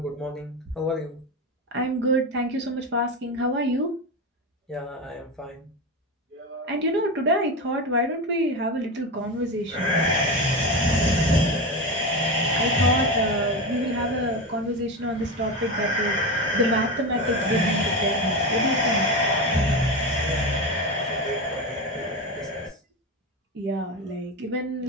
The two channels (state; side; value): normal; both; correlation 0.19